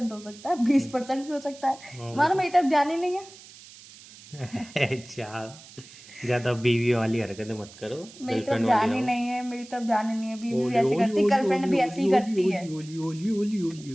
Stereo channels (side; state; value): right; noise; hiss, 20 dB below the sound